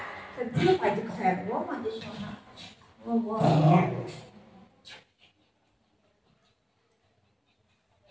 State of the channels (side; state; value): both; identical; correlation 1.00